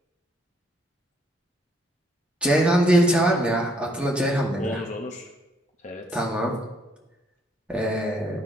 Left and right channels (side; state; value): both; normal; correlation 0.68